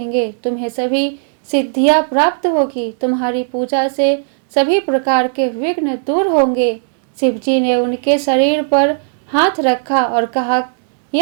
तुम्हें सभी सिद्धियां प्राप्त होगी। तुम्हारी पूजा से सभी प्रकार के विघ्न दूर होंगे। शिव जी ने उनके शरीर पर हाथ रखा और कहा,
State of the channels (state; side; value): silent; left; digital silence